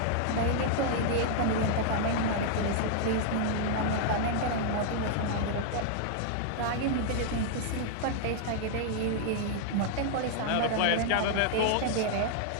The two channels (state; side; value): different; both; correlation -0.01